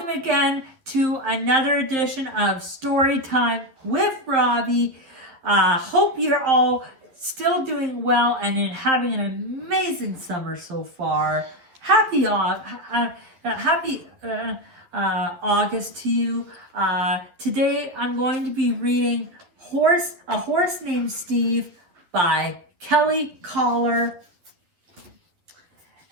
again to another edition of Story Time with Robbie. Hope you're all still doing well and having an amazing summer so far. Happy August to you. Today I'm going to be reading A Horse Named Steve by Kelly Collar.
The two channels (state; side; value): late; left; 11 ms